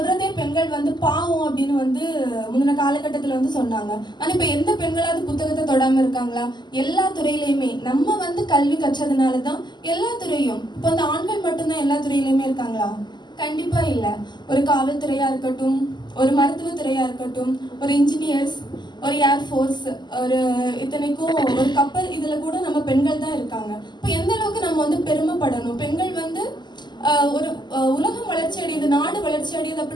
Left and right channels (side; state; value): right; late; 0.21 ms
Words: பெண்கள் வந்து பாவம் அப்படின்னு வந்து முந்தின காலகட்டத்தில் வந்து சொன்னாங்க. ஆனால் இப்போ எந்த பெண்களாவது புத்தகத்தை தொடாமல் இருக்காங்களா? எல்லா துறையிலையுமே நம்ம வந்து கல்வி கற்றதுனால தான் எல்லா துறையும். இப்போ வந்து ஆண்கள் மட்டும்தான் எல்லா துறையிலையுமே இருக்காங்களா? கண்டிப்பா இல்லை. ஒரு காவல்துறையா இருக்கட்டும், ஒரு மருத்துவத்துறையா இருக்கட்டும், ஒரு இன்ஜினியர்ஸ், ஒரு ஏர்ஃபோர்ஸ், ஒரு இத்தனைக்கும் ஒரு கப்பல், இதுல கூட நம்ம பெண்கள் தான் இருக்காங்க. இப்போ எந்த அளவுக்கு நம்ம வந்து பெருமைப்படணும். பெண்கள் வந்து ஒரு உலகம் வளர்ச்சி அடையுது, நாடு வளர்ச்சி அடையுது